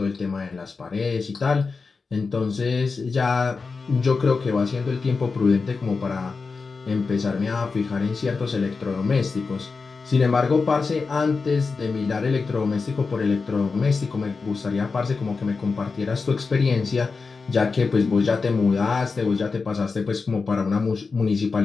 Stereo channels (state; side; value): quieter; right; 4.5 dB